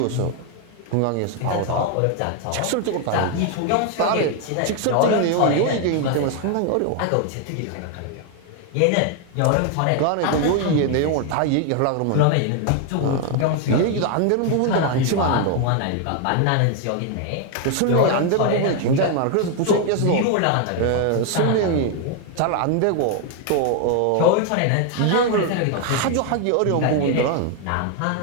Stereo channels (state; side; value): different; both; correlation 0.01